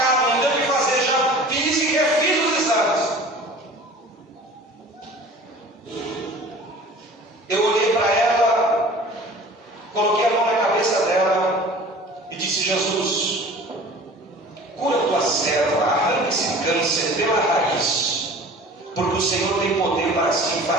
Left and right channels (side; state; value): both; normal; correlation 0.43